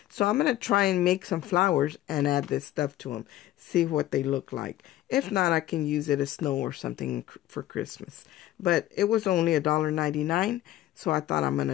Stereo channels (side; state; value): right; quieter; 14.2 dB